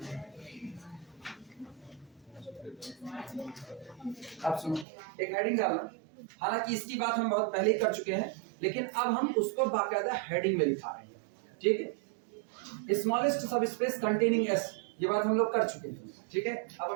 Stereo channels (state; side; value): drops out; left; at 4.9 s